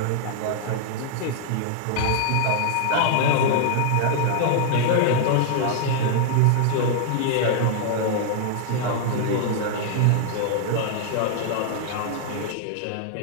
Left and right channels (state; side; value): different; both; correlation -0.01